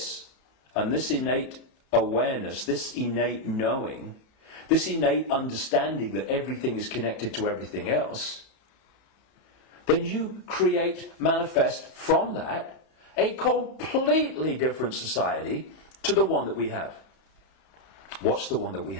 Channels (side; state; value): right; late; 34 ms